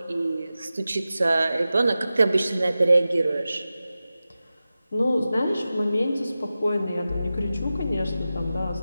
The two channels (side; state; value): both; inverted; correlation -0.94